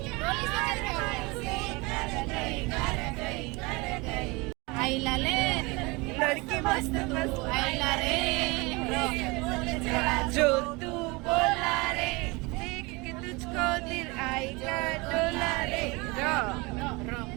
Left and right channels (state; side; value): quieter; left; 25.7 dB